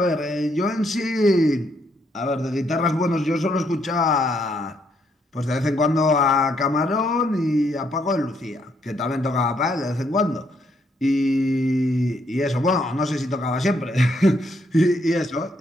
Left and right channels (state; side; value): normal; both; correlation 0.73